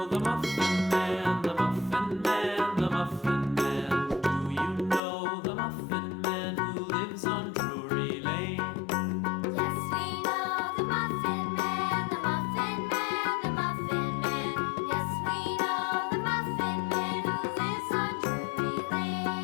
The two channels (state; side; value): drops out; right; at 5.0 s